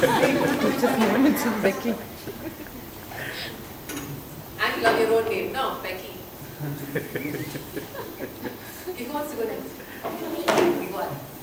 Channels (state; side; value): identical; both; correlation 1.00